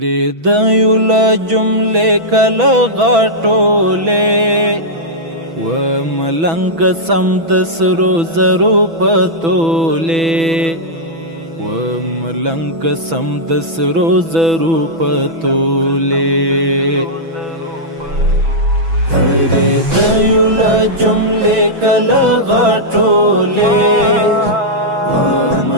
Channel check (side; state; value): left; late; 6.1 ms